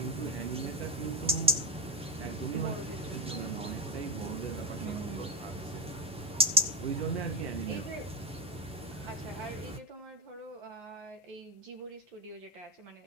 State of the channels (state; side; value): normal; both; correlation 0.16